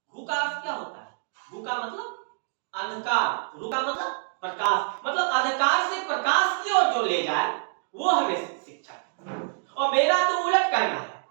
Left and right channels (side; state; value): left; silent; digital silence